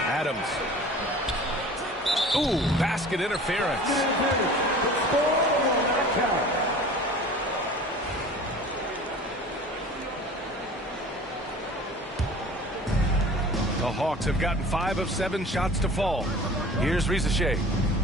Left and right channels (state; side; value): normal; both; correlation 0.42